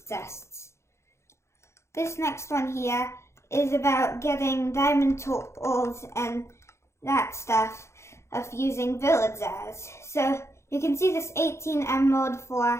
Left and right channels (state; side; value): late; right; 0.13 ms